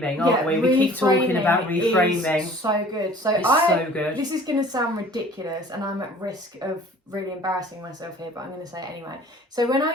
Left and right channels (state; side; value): normal; both; correlation 0.49